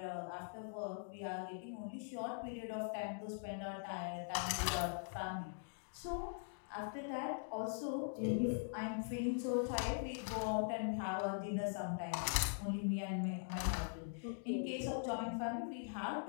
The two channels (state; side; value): silent; right; digital silence